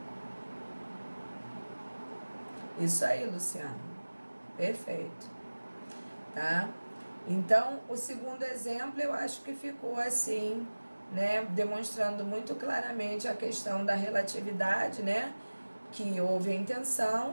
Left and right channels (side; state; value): both; inverted; correlation -1.00